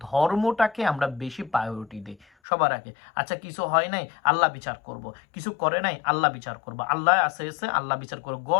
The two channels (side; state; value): right; drops out; at 2.2 s